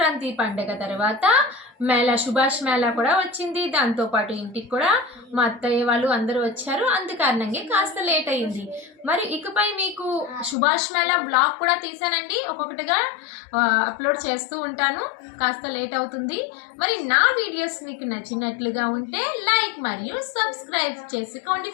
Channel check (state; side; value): drops out; right; at 10.6 s